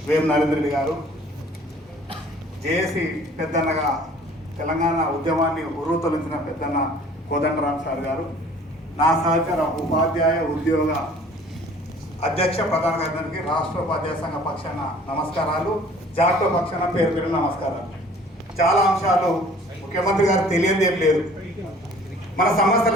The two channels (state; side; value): normal; both; correlation 0.52